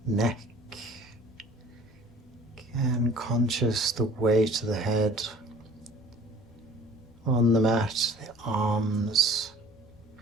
neck, again conscious the weight of the head on the mat, the arms,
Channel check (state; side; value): normal; both; correlation 0.48